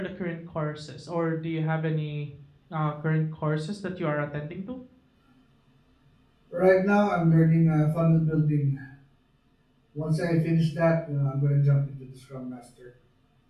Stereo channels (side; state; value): both; identical; correlation 1.00